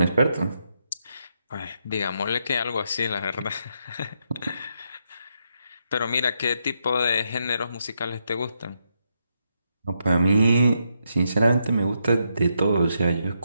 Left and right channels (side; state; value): both; inverted; correlation -0.80